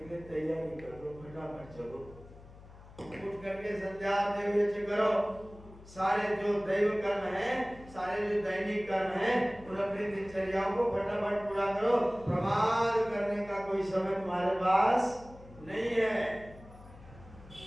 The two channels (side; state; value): left; noise; hum, 20 dB below the sound